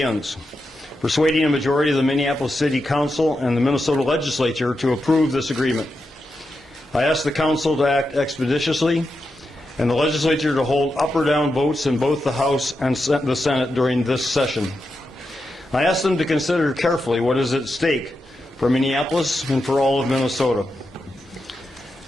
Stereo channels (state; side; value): normal; both; correlation 0.87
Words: persuading a majority of the Minneapolis City Council and the Minnesota Legislature to approve this agreement. I ask the Council to act expeditiously and the Legislature to hold up or down votes in both the House and the Senate during this session. I ask them to consider carefully what is at stake for Minneapolis and for all of Minnesota.